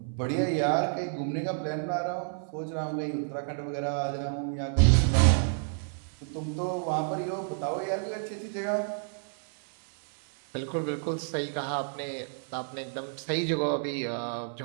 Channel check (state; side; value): silent; left; 58 dB below the other